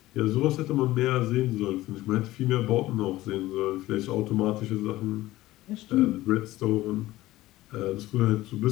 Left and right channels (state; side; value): quieter; right; 16.8 dB